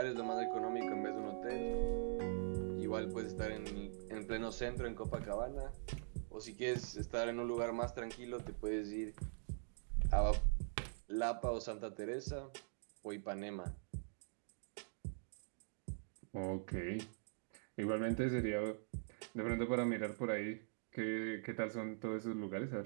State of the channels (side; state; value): left; silent; digital silence